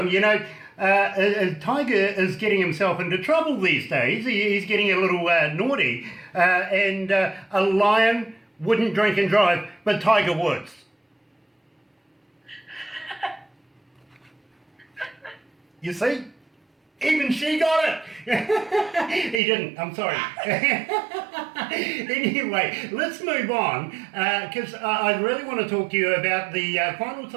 you know, Tiger is getting himself into trouble these days. He's getting a little naughty, and a lion wouldn't drink and drive, but Tiger Woods. You see? Even she got it. He didn't. I'm sorry. Anyway, let's move on because I really want to talk to you about the final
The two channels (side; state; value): left; drops out; at 19.4 s